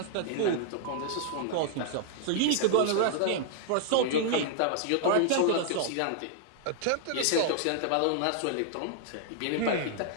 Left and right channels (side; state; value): both; different; correlation 0.00